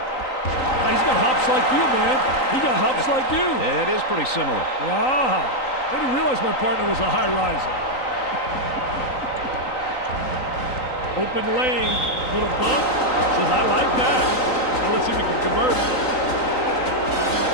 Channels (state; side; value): late; right; 3.9 ms